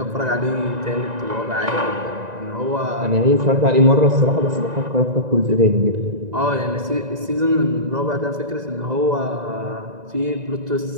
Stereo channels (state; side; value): late; left; 1.9 ms